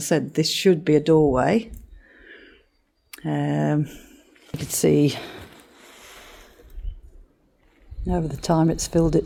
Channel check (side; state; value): both; identical; correlation 1.00